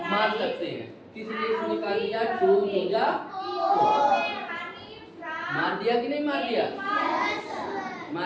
मार सकते हैं। इसलिए इसने निकाल दिया 2 2 मार दिया कि नहीं मार दिया?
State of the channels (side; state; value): both; identical; correlation 1.00